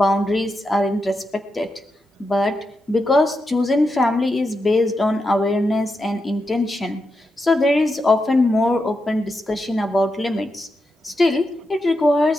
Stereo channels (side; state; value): both; normal; correlation 0.86